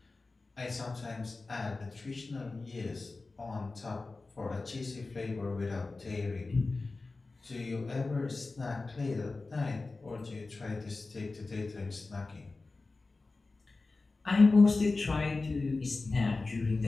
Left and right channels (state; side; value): quieter; right; 3.6 dB